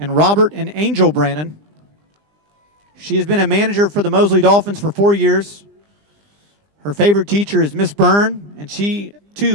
Robert and Angel Brannon. She has been a manager for the Mosley Dolphins for 4 years. Her favorite teacher is Miss Byrne, and she,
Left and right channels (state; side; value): late; left; 20 ms